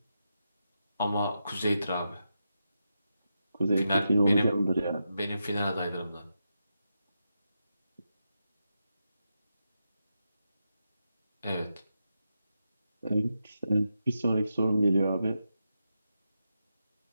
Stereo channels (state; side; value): inverted; both; correlation -0.87